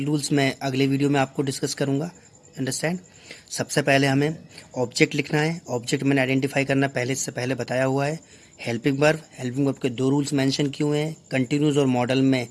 रूल्स मैं अगले वीडियो में आपको डिस्कस करूँगा। अंडरस्टैंड। सबसे पहले हमें ऑब्जेक्ट लिखना है। ऑब्जेक्ट मैंने आइडेंटिफाई करना से पहले बताया हुआ है। हेल्पिंग वर्ब के 2 रूल्स मेंशन किए हुए हैं। कंटिन्यूस और मॉडल में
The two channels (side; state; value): both; identical; correlation 1.00